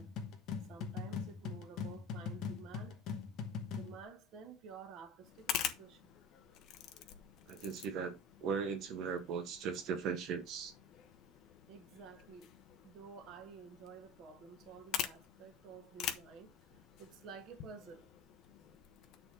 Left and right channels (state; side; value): normal; both; correlation 0.34